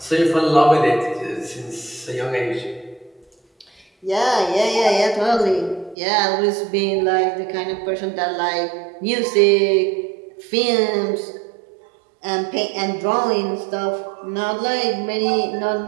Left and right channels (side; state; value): left; drops out; at 6.0 s